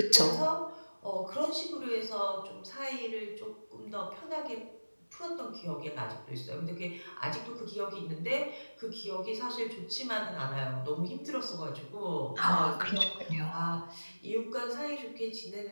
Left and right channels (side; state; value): both; inverted; correlation -1.00